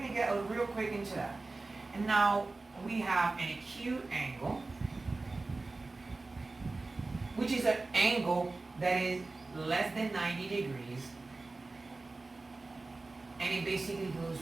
to get real quick into that. And now we have an acute angle, which is an angle that is less than 90 degrees, and it basically goes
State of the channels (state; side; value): quieter; left; 3.4 dB